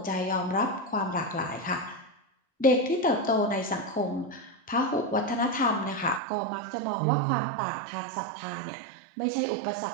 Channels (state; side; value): drops out; left; at 6.2 s